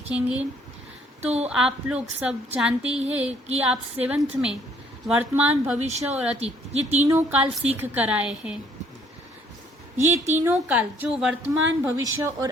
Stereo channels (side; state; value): both; normal; correlation 0.63